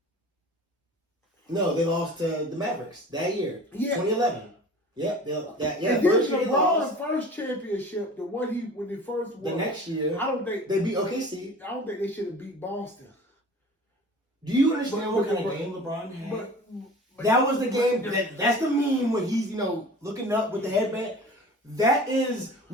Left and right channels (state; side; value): normal; both; correlation 0.41